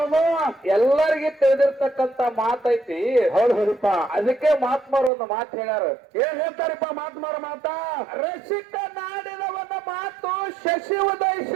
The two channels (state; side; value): drops out; left; at 5.1 s